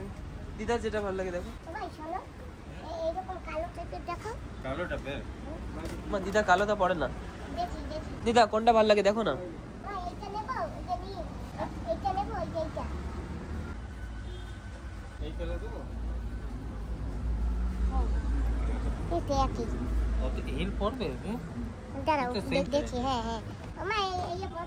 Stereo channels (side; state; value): both; identical; correlation 1.00